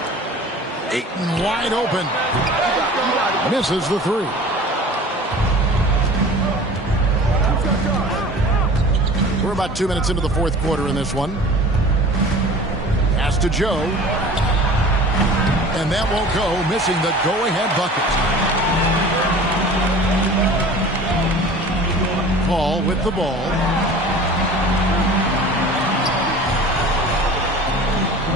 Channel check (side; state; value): both; normal; correlation 0.42